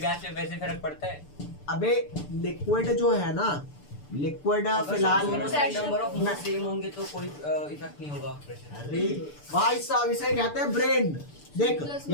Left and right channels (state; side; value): late; right; 6.8 ms